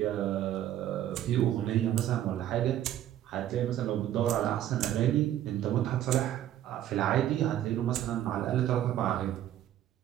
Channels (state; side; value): quieter; left; 12.0 dB